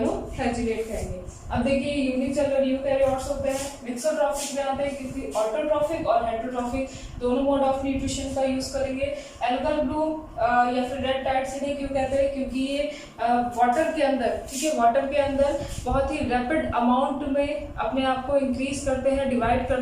कहेंगे। अब देखिए यूनिसेलुलर यूकैरियोट्स होते हैं, मिक्सोट्रॉफिक में आते हैं क्योंकि ऑटोट्रॉफिक और हेटेरोट्रॉफिक दोनों मोड ऑफ न्यूट्रिशन का यूज करेंगे। एल्गल ब्लूम या फिर रेड टाइड्स इन्हें क्यों कहते हैं, क्योंकि ये वाटर के अंदर, ठीक है, वाटर के अंदर बहुत ही रैपिड अमाउंट में अपने आप को इंक्रीज करते हैं, डिवाइड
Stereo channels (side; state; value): both; identical; correlation 1.00